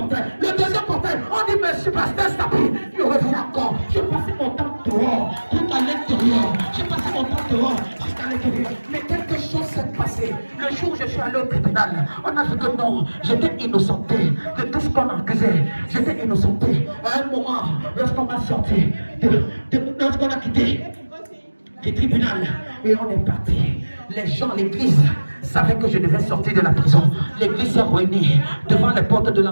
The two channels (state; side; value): inverted; both; correlation -1.00